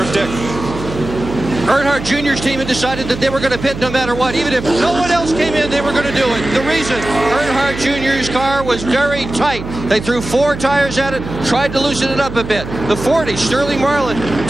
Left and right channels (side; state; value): right; noise; hum, 10 dB below the sound